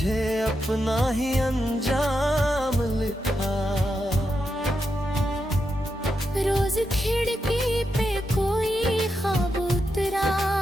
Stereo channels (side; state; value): both; normal; correlation 0.86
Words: अपना ही अंजाम लिखा। रोज खिड़की पे कोई ख्वाब